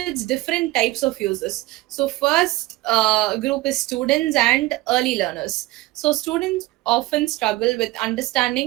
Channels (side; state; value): left; quieter; 19.3 dB